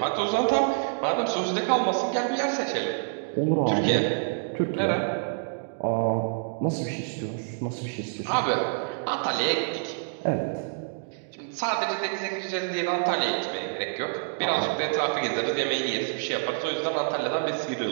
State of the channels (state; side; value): silent; left; digital silence